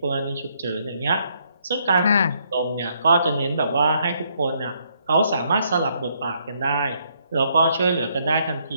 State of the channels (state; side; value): inverted; both; correlation -0.72